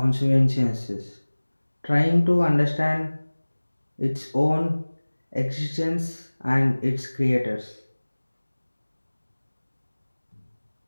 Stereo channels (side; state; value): both; inverted; correlation -1.00